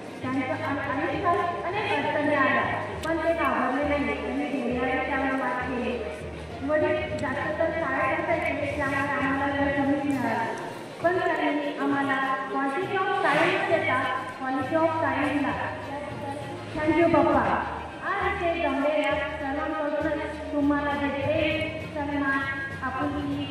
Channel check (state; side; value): identical; both; correlation 1.00